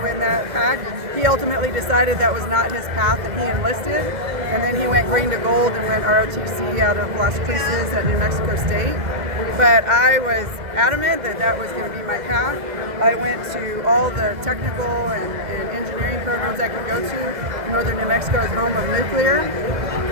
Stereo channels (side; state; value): left; late; 2.0 ms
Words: in that pack. He ultimately decided that was not his path and he enlisted. And then he went green to gold and went ROTC out of Las Cruces at New Mexico State. But I was adamant that that was going to be my path. I went to all the technical and engineering programs I could go to. Northern New Mexico is home of nuclear.